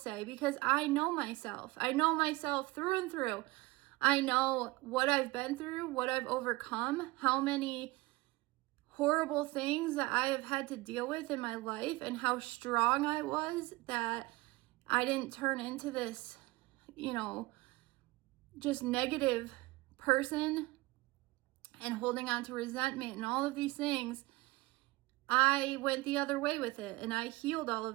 because I know myself. I know myself through and through. I know what I've been through, what I've overcome, how many horrible things that I have had to deal with in my life, and how strong I was that I didn't turn into this, just negative person and holding on to resentment and all of these things. I went the other way with it, and I healed all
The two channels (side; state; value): left; quieter; 21.5 dB